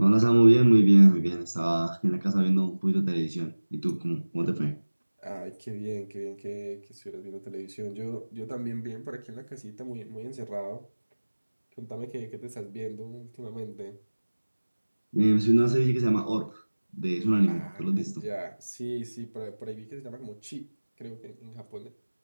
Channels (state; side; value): inverted; both; correlation -1.00